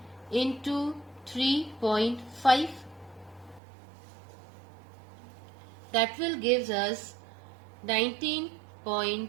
into 3.5. That will give us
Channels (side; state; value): left; drops out; at 3.6 s